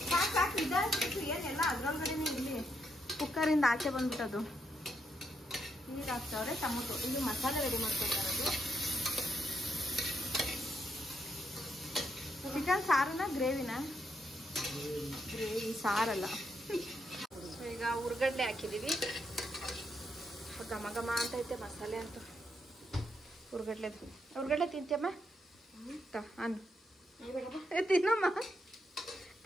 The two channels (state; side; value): normal; both; correlation 0.79